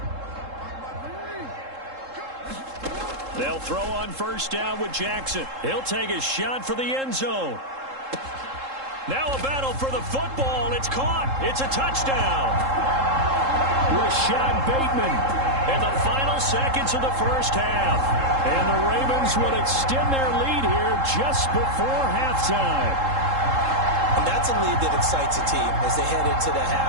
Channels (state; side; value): late; left; 3.7 ms